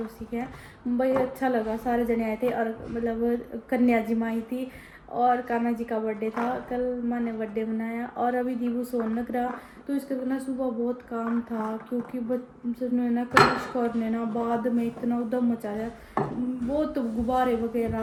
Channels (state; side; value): identical; both; correlation 1.00